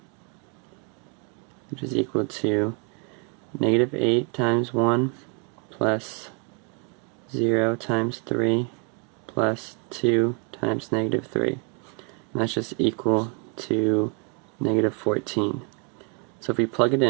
which is equal to negative 8 times 1 plus 0 times 3 plus 2 times negative 3. And that's just equal to negative 14. So if we plug it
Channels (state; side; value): quieter; left; 36.3 dB